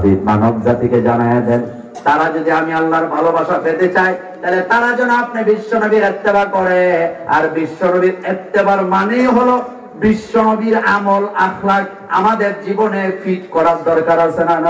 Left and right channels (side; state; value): both; identical; correlation 1.00